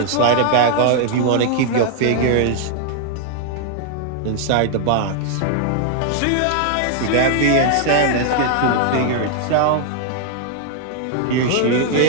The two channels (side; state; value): both; different; correlation 0.00